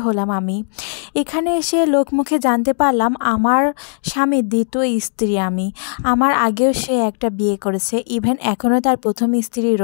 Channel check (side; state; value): right; silent; digital silence